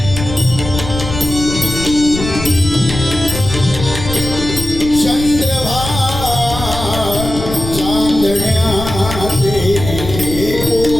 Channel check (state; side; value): noise; left; rumble, 7 dB below the sound